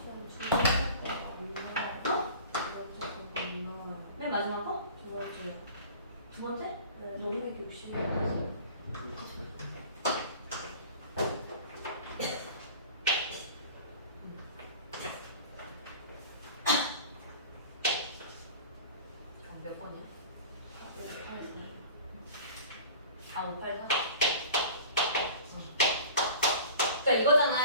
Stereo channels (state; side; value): inverted; both; correlation -0.42